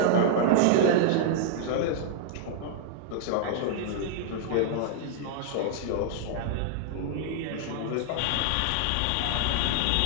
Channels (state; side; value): different; both; correlation -0.01